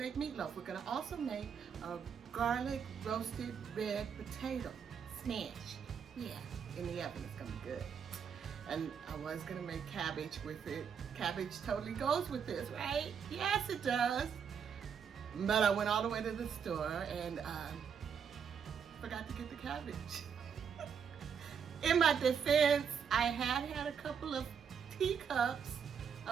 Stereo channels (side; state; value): left; quieter; 7.1 dB